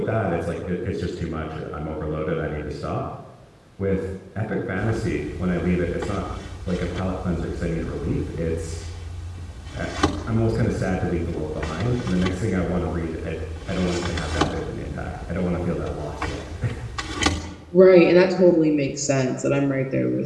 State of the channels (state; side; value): identical; both; correlation 1.00